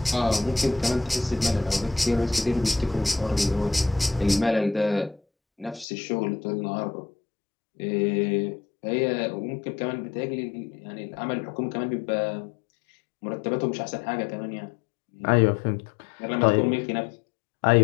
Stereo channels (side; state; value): right; drops out; at 5.9 s